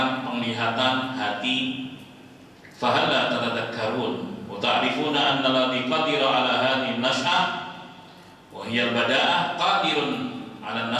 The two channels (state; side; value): identical; both; correlation 1.00